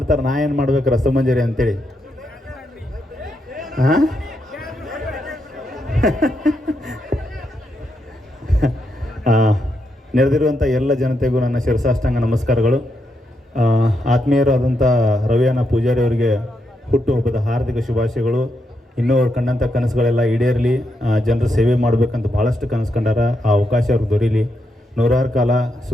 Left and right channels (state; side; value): normal; both; correlation 0.81